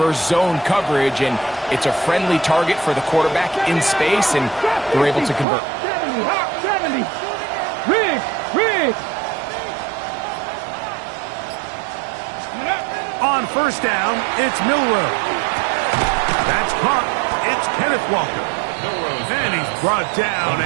zone coverage. And it's a friendly target for the quarterback in space, and they're able to convert. 70. Riggs. On 1st down, it's Milrow. That's caught. It's Kenneth Walker. And he's brought down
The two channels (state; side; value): drops out; left; at 5.5 s